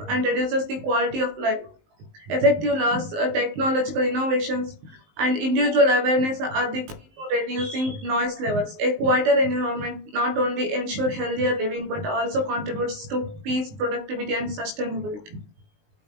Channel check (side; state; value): left; late; 19 ms